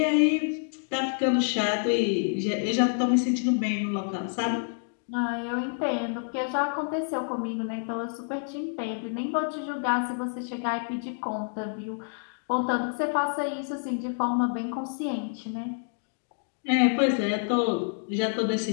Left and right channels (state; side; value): silent; right; digital silence